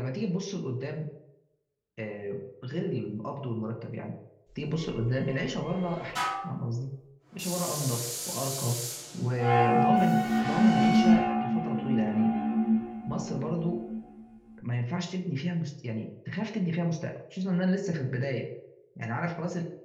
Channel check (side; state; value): both; identical; correlation 1.00